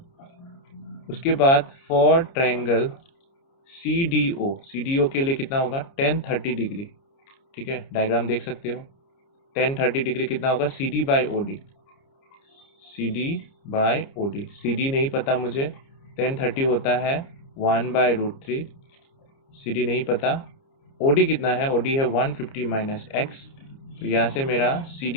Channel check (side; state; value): right; late; 29 ms